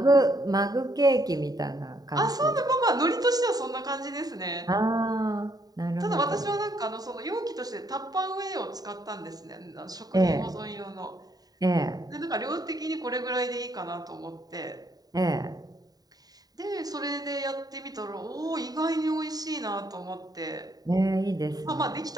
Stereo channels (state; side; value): late; left; 0.18 ms